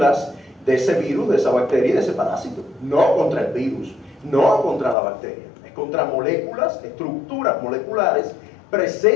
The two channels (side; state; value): right; drops out; at 5.0 s